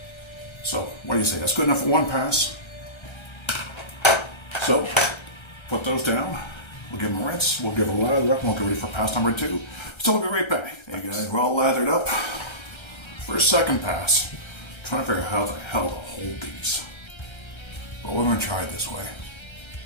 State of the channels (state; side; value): late; right; 1.3 ms